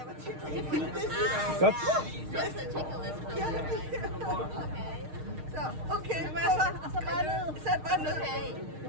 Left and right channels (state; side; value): late; left; 6.5 ms